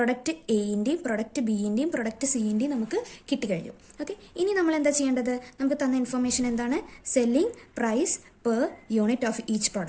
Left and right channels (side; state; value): both; identical; correlation 1.00